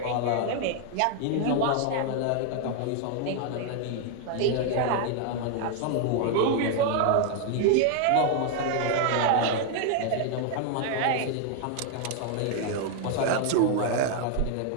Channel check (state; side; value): different; both; correlation 0.00